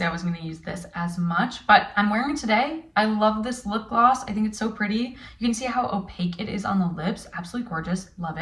I wasn't going to use this as much, but I'm wearing it today. I love this lip gloss. I think it's so pretty. You can see how opaque it is on the lips. Absolutely gorgeous. Love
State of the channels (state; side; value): identical; both; correlation 1.00